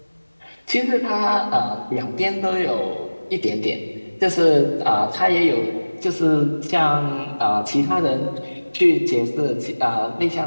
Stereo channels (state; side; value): inverted; both; correlation -1.00